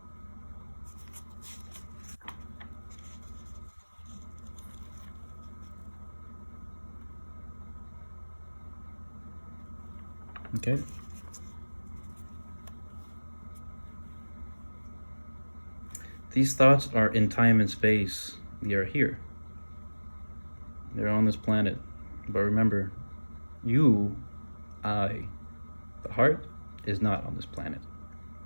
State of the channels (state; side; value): inverted; both; correlation -1.00